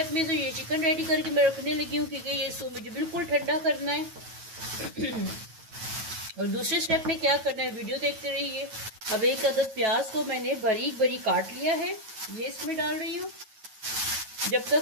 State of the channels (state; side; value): late; left; 9.2 ms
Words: में तो ये चिकन रेडी करके मैं रखने लगी हूँ, क्योंकि ये इसको मुझे बिल्कुल ठंडा करना है। और दूसरे स्टेप में क्या करना है, वीडियो देखते रहिए। अब 1 अदद प्याज को मैंने बारीक बारीक काट लिया है, ये इसमें डाल रही हूँ। जब